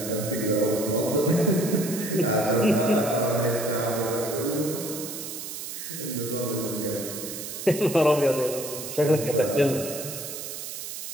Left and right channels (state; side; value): noise; right; hiss, 8 dB below the sound